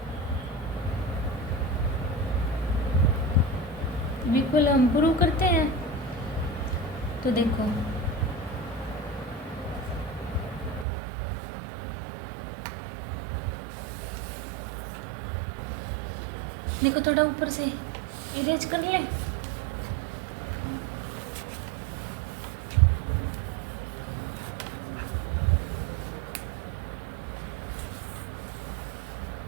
इक्वल हम प्रूव करते हैं। तो देखो देखो थोड़ा ऊपर से इरेज कर ले,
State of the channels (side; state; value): left; drops out; at 10.9 s